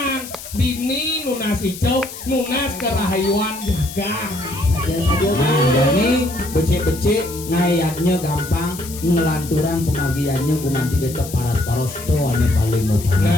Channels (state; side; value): noise; left; hiss, 13 dB below the sound